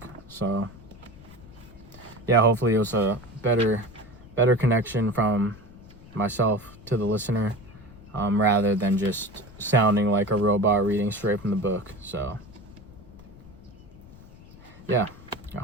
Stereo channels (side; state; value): left; noise; rumble, 20 dB below the sound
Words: So yeah, hopefully it was a better connection from myself to the listener, rather than just sounding like a robot reading straight from the book. So yeah, I